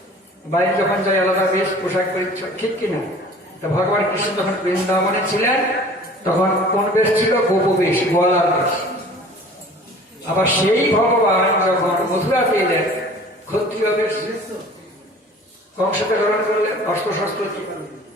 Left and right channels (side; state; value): both; normal; correlation 0.46